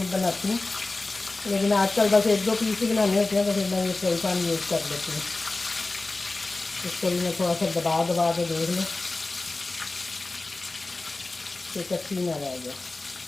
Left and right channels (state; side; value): quieter; right; 3.2 dB